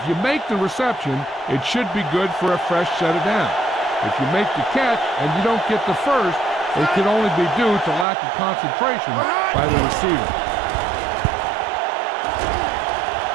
you make the reception, it should be good for a fresh set of downs. If you make the catch and you don't get the first, it can only be due to lack of concentration by the receiver.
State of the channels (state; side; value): drops out; left; at 8.1 s